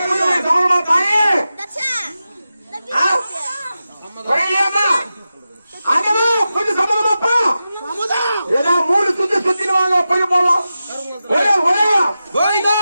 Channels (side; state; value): both; inverted; correlation -0.92